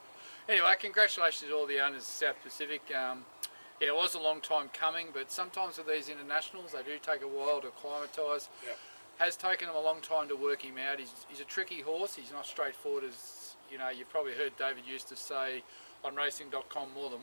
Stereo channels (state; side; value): inverted; both; correlation -1.00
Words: Anyway, congratulations to all the owners of South Pacific. Yeah, it was a long time coming, but sometimes with these internationals, they do take a while to acclimatise. Yeah. Has taken him a long time to work him out. He's a tricky horse. He's not straightforward, as you know. You've probably heard David used to say on racing.com more